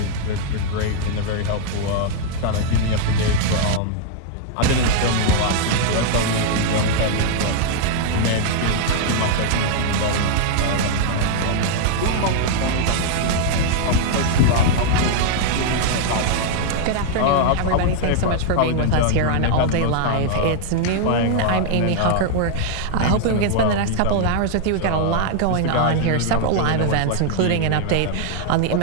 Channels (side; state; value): both; different; correlation -0.01